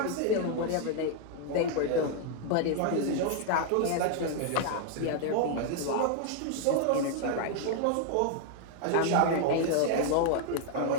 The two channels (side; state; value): both; different; correlation 0.00